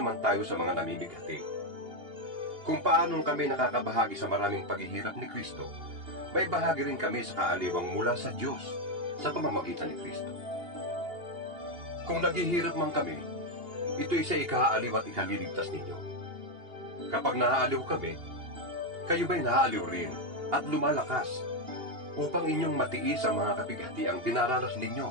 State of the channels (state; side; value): late; left; 2.8 ms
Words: tayo sa mga namimighati. Kung paanong kami nakakabahagi sa maraming paghihirap ni Kristo, may bahagi rin kami sa kaaliwang mula sa Diyos sa pamamagitan ni Kristo. Kung naghihirap man kami, ito'y sa ikaaliw at ikaliligtas ninyo. Kapag naaaliw kami, kayo ba'y naaaliw rin at lumalakas upang inyong matiis ang mga kapighatiang dinaranas